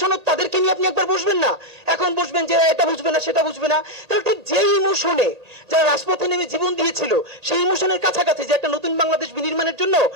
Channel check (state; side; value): late; left; 1.8 ms